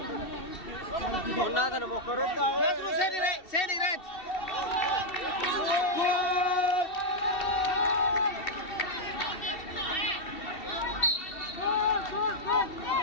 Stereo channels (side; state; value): right; late; 2.7 ms